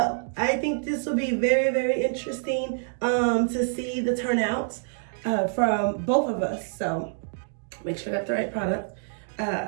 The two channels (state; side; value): silent; left; digital silence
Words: I think this will be very, very interesting to see the turnouts from both of us. So make sure I got the right product.